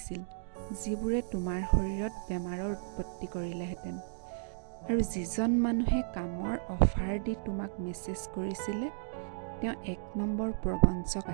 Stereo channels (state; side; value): silent; left; digital silence